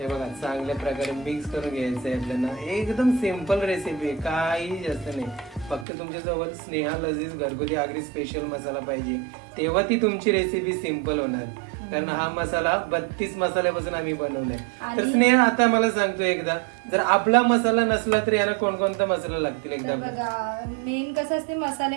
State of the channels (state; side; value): drops out; left; at 5.9 s